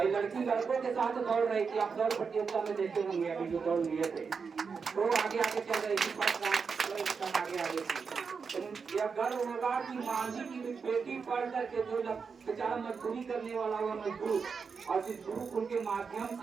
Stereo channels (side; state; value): left; quieter; 5.5 dB